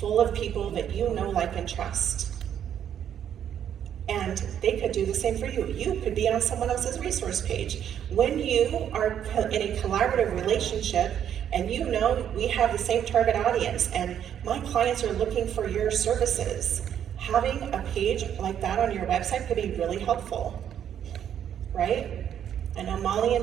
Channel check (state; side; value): quieter; left; 9.5 dB